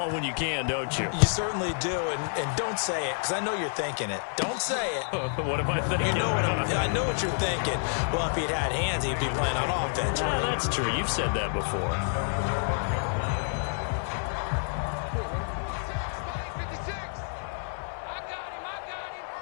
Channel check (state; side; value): silent; right; 59 dB below the other